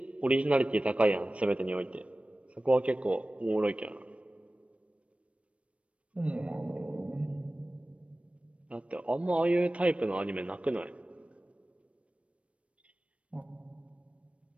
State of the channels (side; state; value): left; late; 0.062 ms